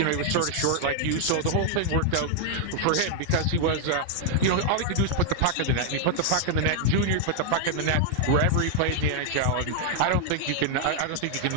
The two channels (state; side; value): different; both; correlation -0.01